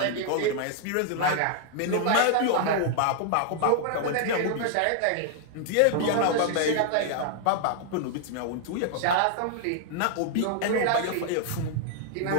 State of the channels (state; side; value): different; both; correlation -0.01